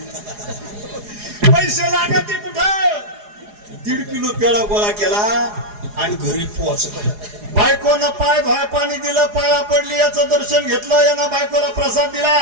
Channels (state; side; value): late; left; 4.8 ms